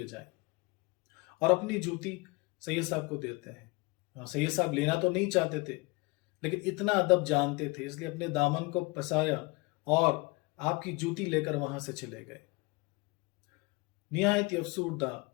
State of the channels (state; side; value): quieter; right; 25.2 dB